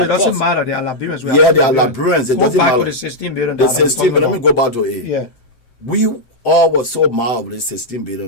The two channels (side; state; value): right; late; 7.7 ms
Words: doesn't matter. They are Liberians. Yeah, they are Liberians. It doesn't matter. Go back to the 16 billion. The 16 billion. Let me go back to it. Yeah. We all were so mad with the 16